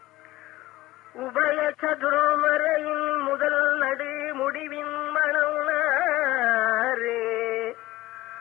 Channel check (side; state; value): right; quieter; 17.9 dB